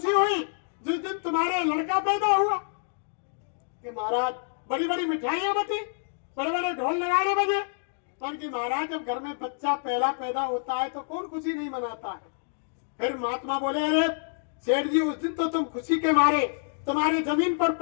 हुई जिस दिन तुम्हारे लड़का पैदा हुआ। कि महाराज बड़ी बड़ी मिठाइयां बटी, बड़े बड़े ढोल नगाड़े बजे, पर कि महाराज जब घर में बच्चा पहला पैदा होता है तो कौन खुशी नहीं मनाता है? फिर महात्मा बोले अरे सेठ जी उस दिन तो तुम खुशी के मारे तुम्हारे जमीन पर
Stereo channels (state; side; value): silent; right; digital silence